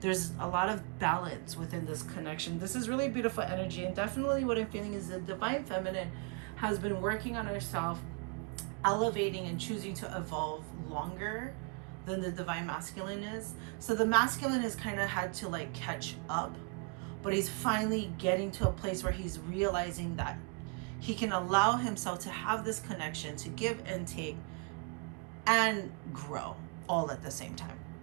There's a lot of balance within this connection. This is really beautiful energy, and definitely what I'm feeling is the divine feminine has been working on herself, elevating and choosing to evolve longer than the divine masculine is. So the masculine has kind of had to like catch up, but he's finally getting to a place where he's realizing that he can allow himself to have this connection, to give and take and grow all at the same time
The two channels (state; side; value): quieter; left; 33.1 dB